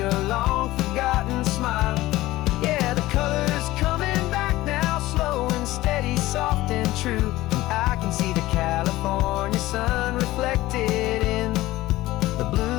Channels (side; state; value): right; quieter; 17.4 dB